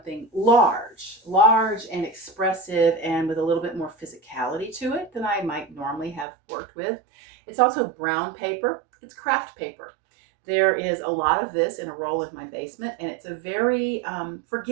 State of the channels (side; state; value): left; drops out; at 6.2 s